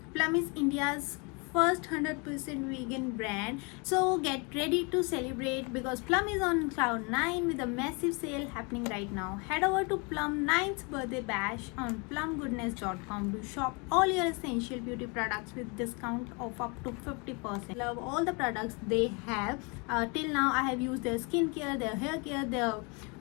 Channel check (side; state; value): right; quieter; 31.5 dB